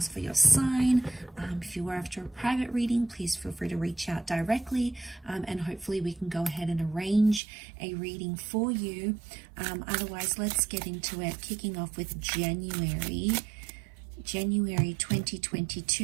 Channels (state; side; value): drops out; left; at 7.4 s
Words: for your sign. If you are after a private reading, please feel free to reach out directly, and hopefully we can go ahead and arrange a reading for you. Otherwise, let's get into it, kicking off with January 2022.